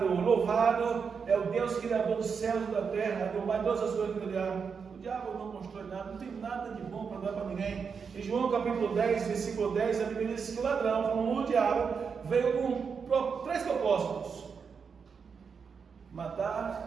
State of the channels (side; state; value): left; quieter; 6.0 dB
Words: louvado, é o Deus Criador dos céus e da terra, do mais todas as coisas que criaram. O diabo não constrói nada, não tem nada de bom para dar para ninguém. Em João capítulo 10, versículo 10, a Bíblia diz que o ladrão, como o diabo, veio com 3 propósitos: